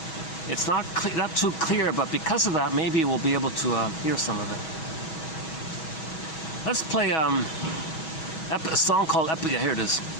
It's not too clear, but because of that, maybe we'll be able to hear some of it. Let's play a song called Epic. Yeah, here it is.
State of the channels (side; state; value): right; late; 6.2 ms